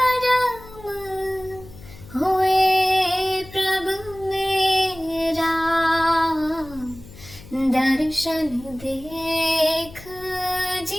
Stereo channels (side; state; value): left; noise; hum, 19 dB below the sound